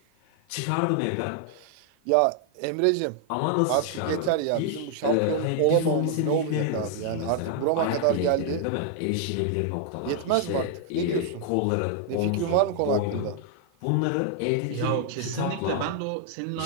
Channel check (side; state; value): both; different; correlation 0.00